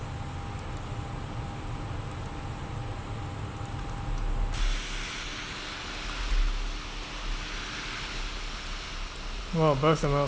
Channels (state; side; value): identical; both; correlation 1.00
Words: Well, both of them are